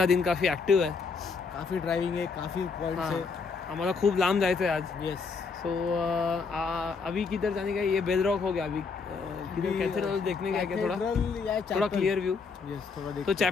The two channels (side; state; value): right; quieter; 4.9 dB